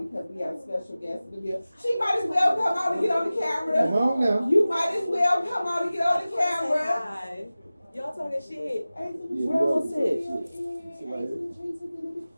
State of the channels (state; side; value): inverted; both; correlation -0.96